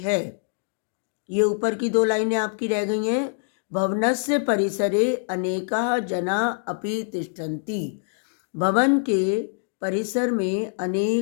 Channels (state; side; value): silent; right; digital silence